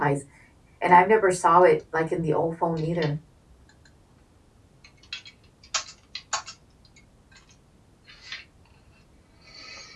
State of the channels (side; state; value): both; identical; correlation 1.00